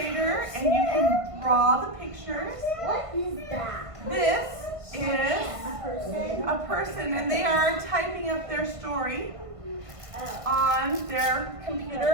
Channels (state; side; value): late; left; 1.5 ms